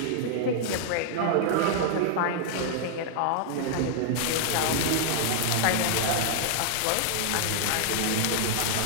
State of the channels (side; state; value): both; different; correlation -0.01